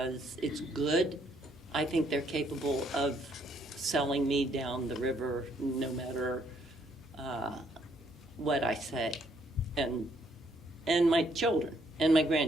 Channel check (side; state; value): both; normal; correlation 0.69